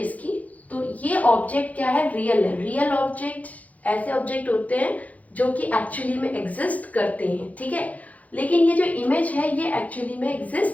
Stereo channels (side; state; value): right; late; 0.073 ms